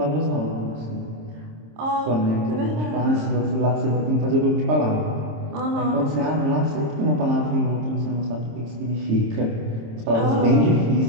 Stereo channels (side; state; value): left; late; 26 ms